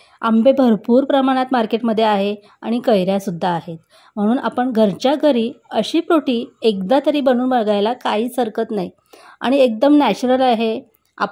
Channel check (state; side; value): identical; both; correlation 1.00